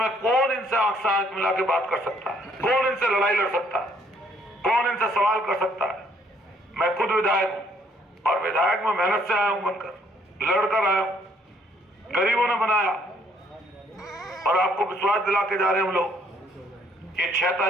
कौन इनसे आंख से आंख मिला के बात कर सकता है? कौन इनसे लड़ाई लड़ सकता है? कौन इनसे सवाल कर सकता है? मैं खुद विधायक हूं और विधायक में मेहनत से आया हूं, बनकर लड़कर आया हूं, गरीबों ने बनाया। और आपको विश्वास दिला के जा रहे हैं हम लोग, ये 6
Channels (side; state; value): both; normal; correlation 0.65